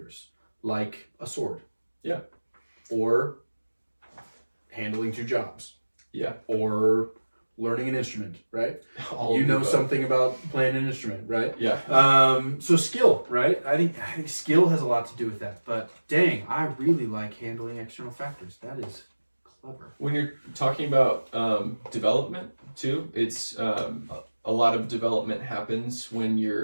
like a sword. Yeah. Or handling 2 jobs. Yeah. Or learning an instrument, right? All you know above. something about playing an instrument, right? Yeah. So skill, right? I think skill has a lot to do with that. But dang, I really like handling external factors. That is clever. When you're talking about development too, it's a lot of development happens when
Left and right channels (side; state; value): both; inverted; correlation -1.00